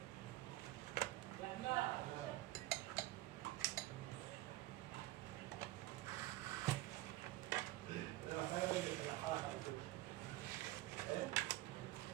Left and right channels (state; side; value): quieter; left; 16.8 dB